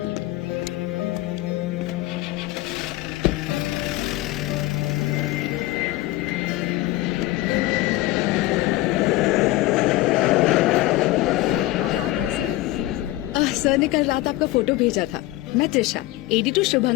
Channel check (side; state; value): right; quieter; 17.3 dB